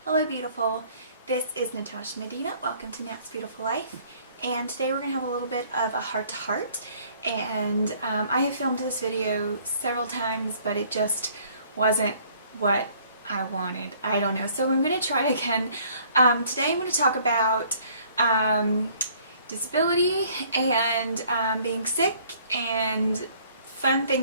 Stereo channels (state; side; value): inverted; both; correlation -0.59